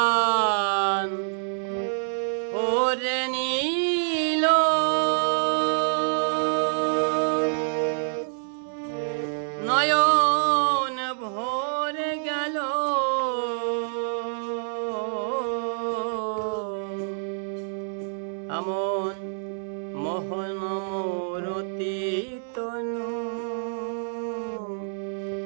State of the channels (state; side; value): silent; left; 59 dB below the other